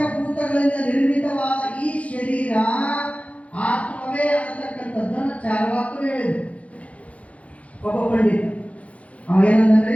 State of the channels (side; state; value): right; late; 0.065 ms